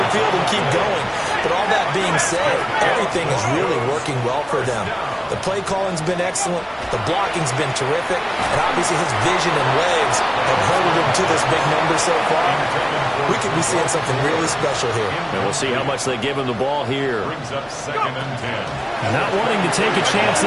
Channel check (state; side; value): identical; both; correlation 1.00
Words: field and keep going. But all that being said, everything is really working well for them. The play calling's been excellent. The blocking's been terrific. And obviously his vision and legs have herded him to this big number so far. We could be seeing something really special here. And we'll see how much they give him the ball here. Brings up 2nd and 10. Not wanting to take a chance